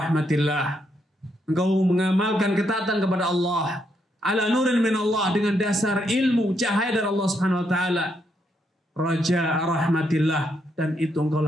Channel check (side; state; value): both; normal; correlation 0.77